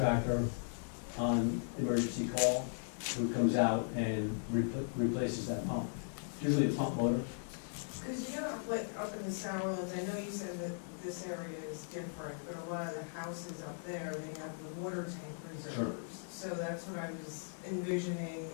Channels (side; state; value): right; silent; digital silence